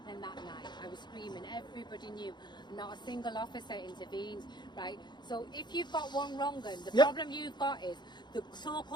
that night. I was screaming, everybody knew. Not a single officer intervened, right? So if you've got one wrong, the problem you've got is the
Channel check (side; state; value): right; late; 0.21 ms